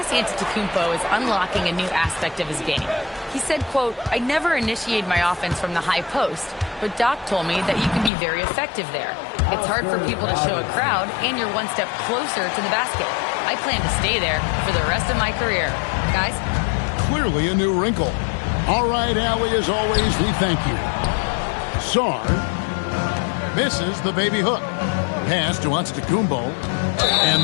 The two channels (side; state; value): right; drops out; at 8.1 s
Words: Antetokounmpo is unlocking a new aspect of his game. He said, quote, "I never initiate my offense from the high post, but Doc told me that you can be very effective there. It's hard for people to show a crowd, and you're one step closer to the basket. I plan to stay there for the rest of my career." Guys? Clearly a new wrinkle. All right, Allie, as always, we thank you. Sarr misses the baby hook. Pass to Antetokounmpo. And